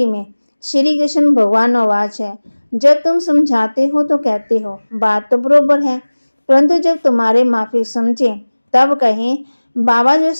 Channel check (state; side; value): inverted; both; correlation -1.00